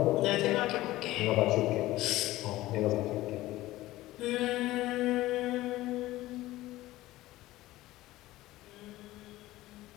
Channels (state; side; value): quieter; right; 16.9 dB